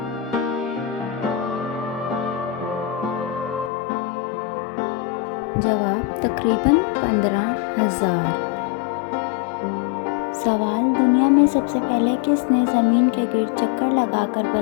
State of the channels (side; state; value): right; drops out; at 3.7 s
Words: जवाब: तकरीबन 15,000। सवाल: दुनिया में सबसे पहले किसने ज़मीन के गिर्द चक्कर लगाकर